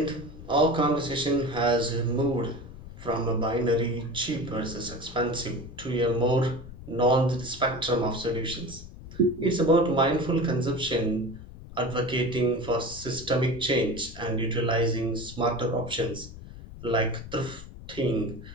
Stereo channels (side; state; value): left; noise; rumble, 15 dB below the sound